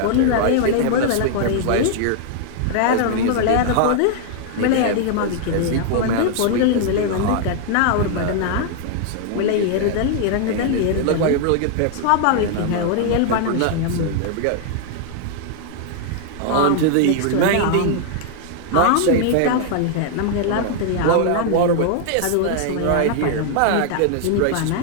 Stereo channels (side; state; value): both; different; correlation 0.00